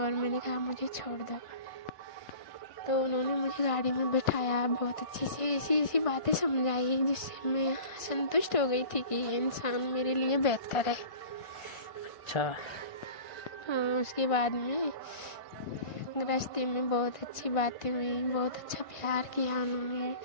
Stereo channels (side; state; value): right; late; 1.5 ms